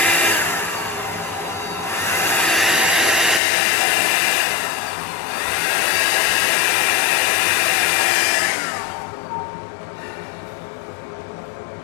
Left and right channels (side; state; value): right; drops out; at 3.4 s